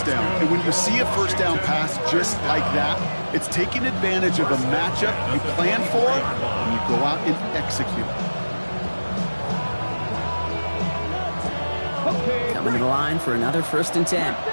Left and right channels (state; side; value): inverted; both; correlation -1.00